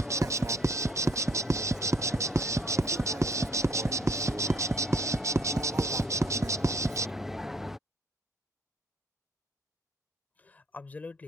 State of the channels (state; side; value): normal; both; correlation 0.61